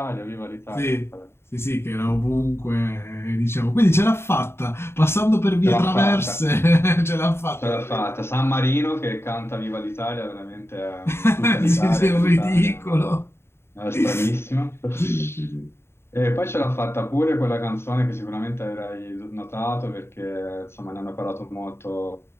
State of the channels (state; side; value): late; right; 0.12 ms